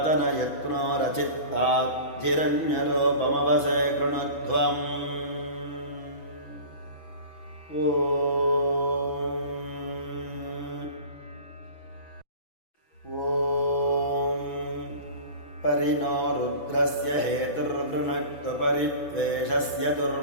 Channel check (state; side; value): late; right; 6.1 ms